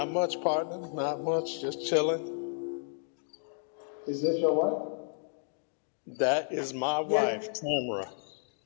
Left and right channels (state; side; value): silent; right; digital silence